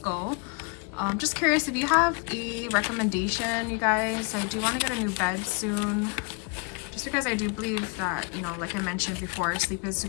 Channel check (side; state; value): right; quieter; 34.1 dB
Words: Just curious if you have a recommendation, you guys. I do want to get a new bed soon, just because I do believe that, you know, like I mentioned before, sleep is